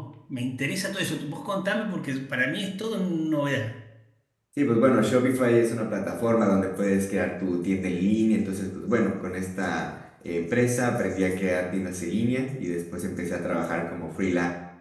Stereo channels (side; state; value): both; identical; correlation 1.00